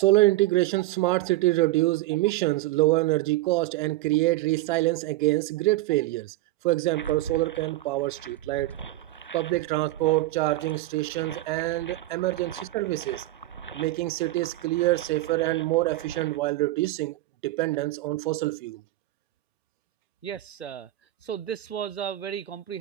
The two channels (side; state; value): left; quieter; 17.2 dB